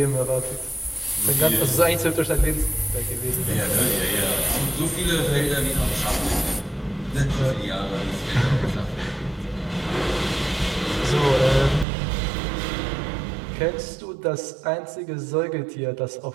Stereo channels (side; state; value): left; drops out; at 11.9 s